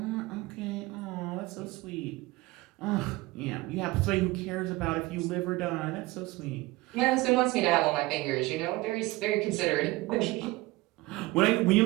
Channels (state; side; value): quieter; left; 20.7 dB